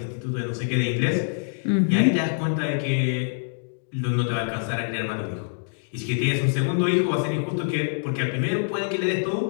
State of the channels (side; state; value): right; silent; digital silence